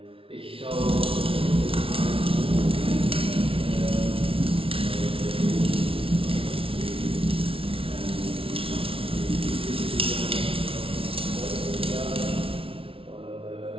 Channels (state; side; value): late; left; 0.26 ms